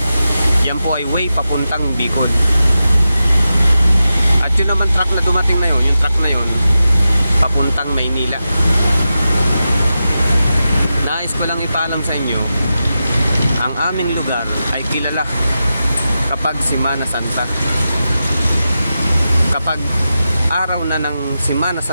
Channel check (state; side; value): inverted; both; correlation -0.91